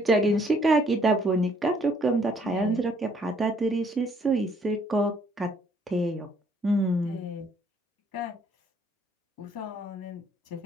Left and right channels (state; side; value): normal; both; correlation 0.65